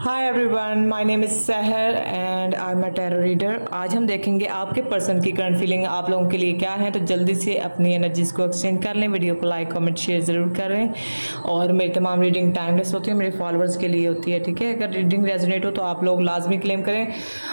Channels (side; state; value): both; inverted; correlation -1.00